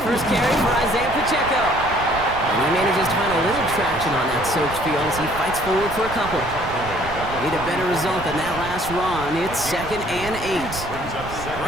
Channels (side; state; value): right; noise; rumble, 11 dB below the sound